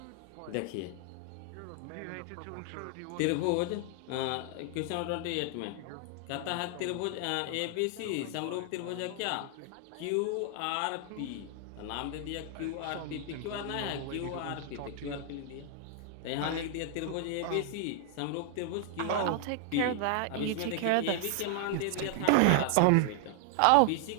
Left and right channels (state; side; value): different; both; correlation 0.00